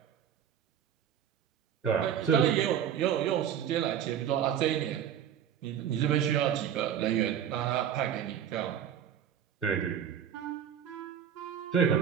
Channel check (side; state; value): left; quieter; 9.1 dB